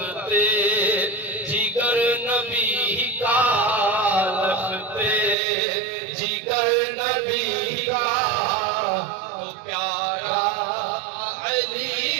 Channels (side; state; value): left; drops out; at 5.4 s